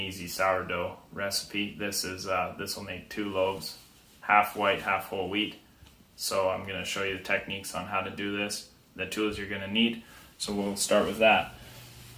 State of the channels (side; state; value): both; identical; correlation 1.00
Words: sourdough recipe. This will make 2 loaves, half white, half whole wheat. So I'm going to show you the techniques on how to do this, the tools you're going to need. So we'll start with that.